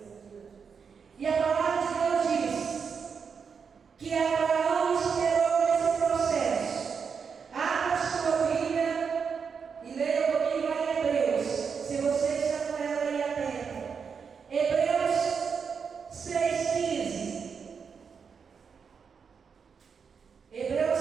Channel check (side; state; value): left; quieter; 6.1 dB